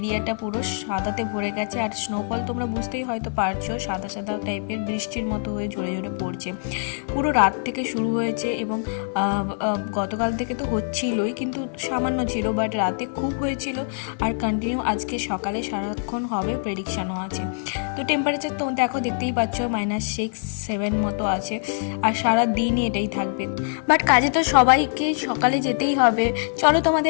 পুরো সাদাতে ভরে গেছে। আর স্নোফল তোমরা বুঝতেই হয়তো পারছো, সাদা সাদা টাইপের বৃষ্টির মতো হয়ে ঝরে ঝরে পড়ছে। পুরো রাত থেকে শুরু হয়েছে এবং গতকাল থেকে তো হচ্ছিলই, কিন্তু সামান্য ছিল, বাট রাতে খুব হয়েছিল। আর কন্টিনিউ আজকে সকালে সারাক্ষণ হবে প্রেডিকশানও আছে। তো টেম্পারেচার তো দেখো দেখতেই পাচ্ছ -6-7 মতো আছে। আর সারা দিনই এটাই থাকবে। বাট কাজে তো সবাইকে সকালে যেতেই হবে। চলো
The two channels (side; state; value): right; silent; digital silence